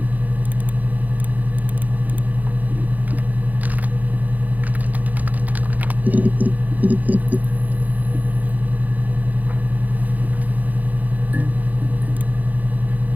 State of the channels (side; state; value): left; late; 0.080 ms